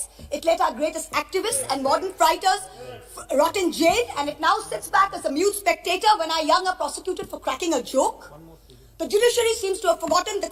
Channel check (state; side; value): identical; both; correlation 1.00